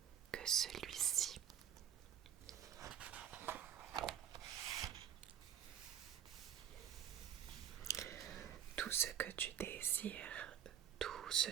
que celui-ci. Tout ce que tu désires, tout ce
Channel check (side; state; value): left; quieter; 9.5 dB